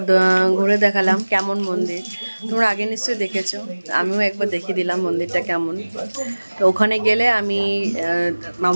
ঘুরে দেখালাম কেমন মন্দির তোমরা আগে নিশ্চয়ই দেখেছো আমিও একবার দেখিয়ে দিলাম মন্দিরটা কেমন তো ওখানে গেলে আমি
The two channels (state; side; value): inverted; both; correlation -1.00